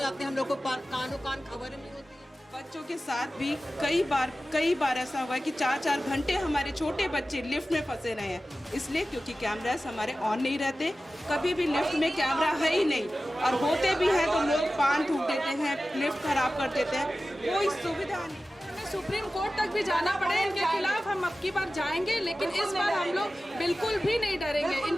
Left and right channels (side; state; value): both; normal; correlation 0.95